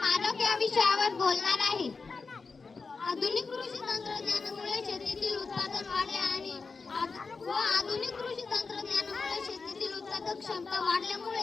या विषयावर बोलणार आहे. आधुनिक कृषी तंत्रज्ञानामुळे शेतीतील उत्पादन वाढले आणि आधुनिक कृषी तंत्रज्ञानामुळे शेतीतील उत्पादक क्षमता वाढल्यामुळे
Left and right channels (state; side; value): quieter; right; 4.5 dB